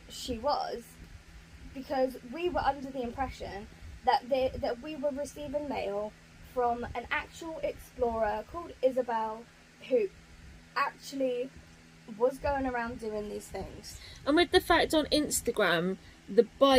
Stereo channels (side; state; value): both; identical; correlation 1.00